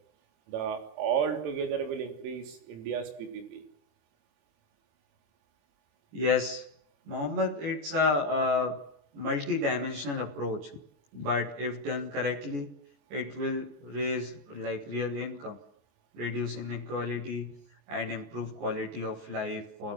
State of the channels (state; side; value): late; left; 25 ms